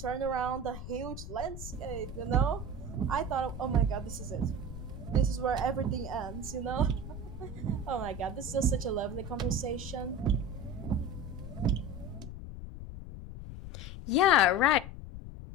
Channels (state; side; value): noise; left; rumble, 10 dB below the sound